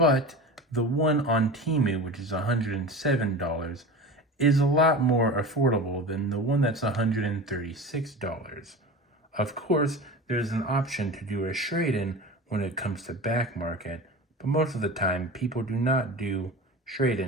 the one on Temu, which is $107, is a lot more affordable than the one that's $136. Of course, there's an option to do a trade-in when it comes to back market, but most of the time people do not do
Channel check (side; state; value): both; normal; correlation 0.31